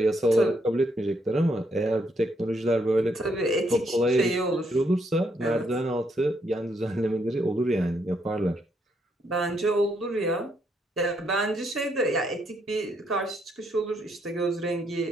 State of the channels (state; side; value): normal; both; correlation 0.75